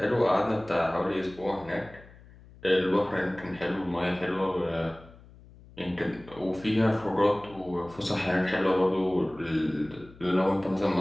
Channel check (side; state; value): left; noise; hum, 22 dB below the sound